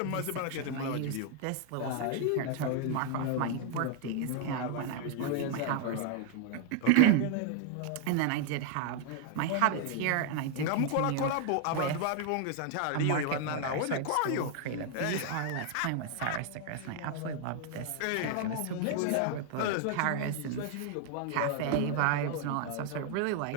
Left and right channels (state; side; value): different; both; correlation 0.00